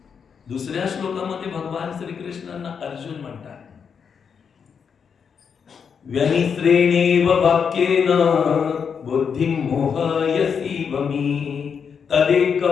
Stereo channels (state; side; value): quieter; right; 6.6 dB